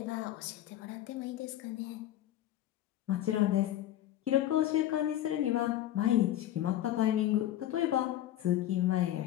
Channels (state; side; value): quieter; right; 12.9 dB